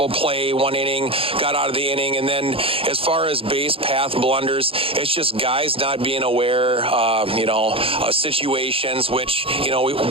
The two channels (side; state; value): left; late; 0.27 ms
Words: play, 1 inning, got out of the inning. And then as far as base path blunders, it's just guys not being aware, of situations, which,